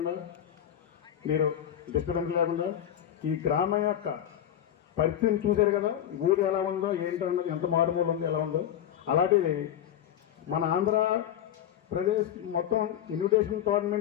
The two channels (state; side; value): quieter; right; 10.6 dB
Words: మీరు డిస్టర్బెన్స్ లేకుండా ఈ గ్రామం యొక్క పరిస్థితిని చూశారు కదా, ఊరు ఎలా ఉందో ఏంటంటే ఎంత మారుమూల ఉందో ఎలా ఉందో, అలాంటిది మన ఆంధ్రప్రదేశ్ మొత్తం ఇన్విటేషన్